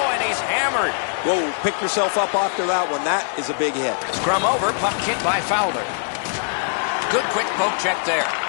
and he's hammered. Whoa, pick yourself up after that one. That is a big hit. Scrum over, puck hit by Fowler. Good quick poke check there.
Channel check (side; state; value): right; silent; digital silence